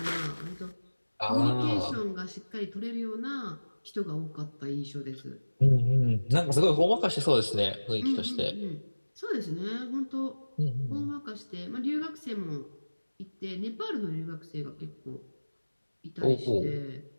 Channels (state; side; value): inverted; both; correlation -1.00